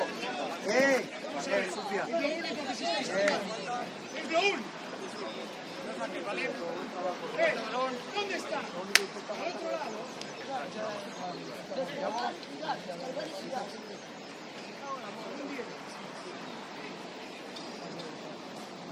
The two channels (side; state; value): both; identical; correlation 1.00